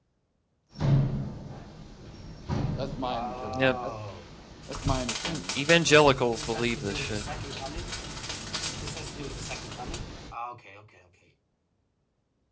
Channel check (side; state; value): both; identical; correlation 1.00